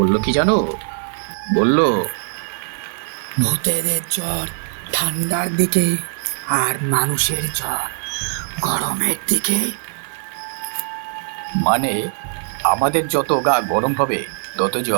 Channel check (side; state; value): left; silent; digital silence